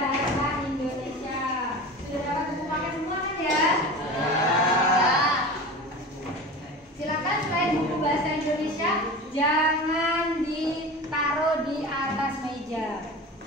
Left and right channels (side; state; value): both; normal; correlation 0.33